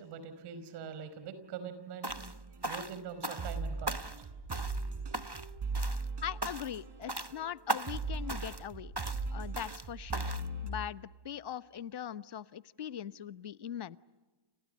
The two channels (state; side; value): late; left; 1.1 ms